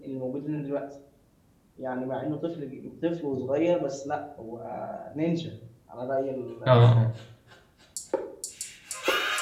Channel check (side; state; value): both; identical; correlation 1.00